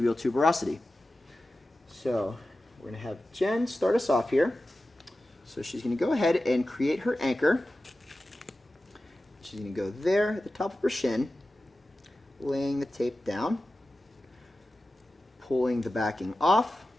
tuberosity. So we're going to have Jen start us off here. So she's going to go ahead and create her anchor. She's going to go there at the top of her shin, laying the tape down, pulling the backing off,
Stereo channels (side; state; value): both; normal; correlation 0.94